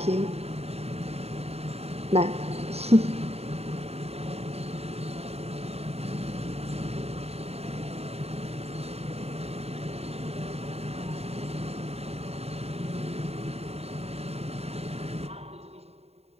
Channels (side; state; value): left; late; 0.30 ms